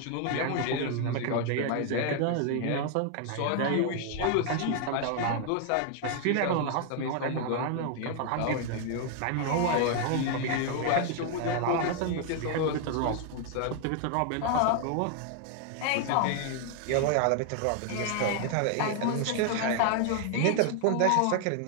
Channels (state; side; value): different; both; correlation 0.00